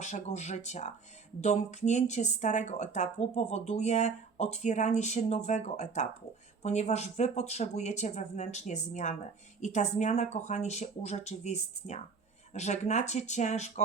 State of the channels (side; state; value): left; quieter; 5.1 dB